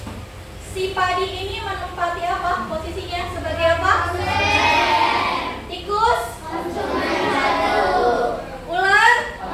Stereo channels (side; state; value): both; identical; correlation 1.00